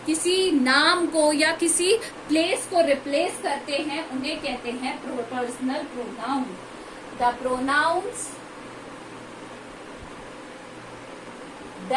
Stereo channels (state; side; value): identical; both; correlation 1.00